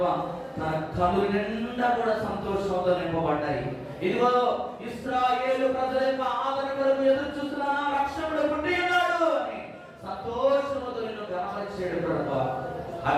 తన కళ్ళు నిండా కూడా సంతోషంతో నింపబడ్డాయి. ఇదిగో ఇశ్రాయేలు ప్రజల యొక్క ఆదరణ కొరకు ఎదురు చూస్తున్నా రక్షకుడు పుట్టి ఉన్నాడు అని సంతోషంతో నిన్ను గమనించాడు ప్రభా.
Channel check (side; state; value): both; identical; correlation 1.00